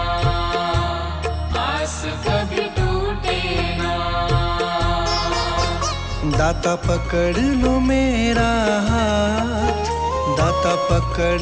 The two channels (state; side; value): identical; both; correlation 1.00